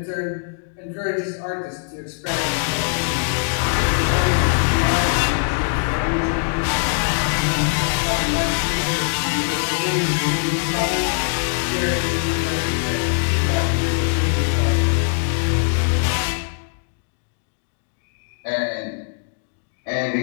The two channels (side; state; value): right; silent; 65 dB below the other